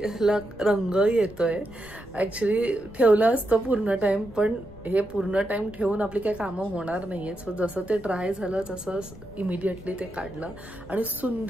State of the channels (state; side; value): noise; left; rumble, 19 dB below the sound